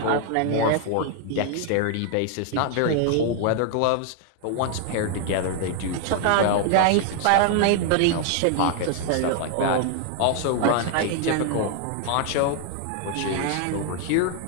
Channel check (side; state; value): both; different; correlation 0.00